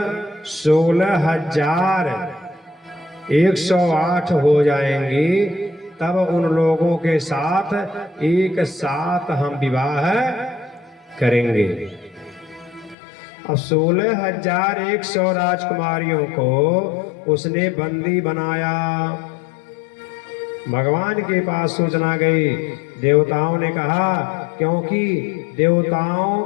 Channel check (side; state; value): right; drops out; at 13.0 s